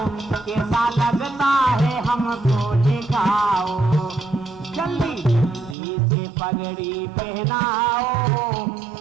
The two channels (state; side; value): drops out; left; at 5.8 s